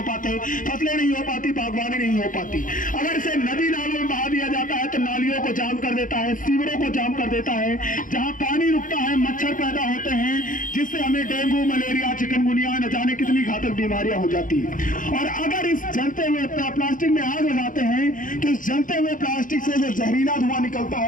पाते, फसलें नहीं हो पाती, बागवानी नहीं हो पाती। अगर इसे नदी नालों में बहा दिया जाता है तो नालियों को जाम कर देता है, सीवरों को जाम कर देता है, जहाँ पानी रुकता है मच्छर पैदा होते हैं, जिससे हमें डेंगू मलेरिया चिकनगुनिया न जाने कितनी घातक बीमारियां हो जाती है। और अगर इस जलते हुए प्लास्टिक में आग लगाते हैं तो इस जलते हुए प्लास्टिक से जो जहरीला धुआं निकलता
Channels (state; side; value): late; right; 0.38 ms